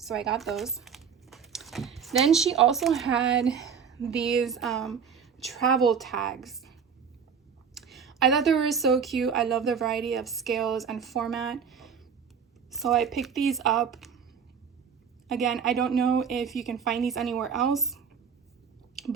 I got those. Then she also had these travel tags. I thought they were so cute. I love the variety of scales and format. So I picked these up. Again, I don't know if you can find these anywhere else,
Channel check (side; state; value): left; quieter; 6.8 dB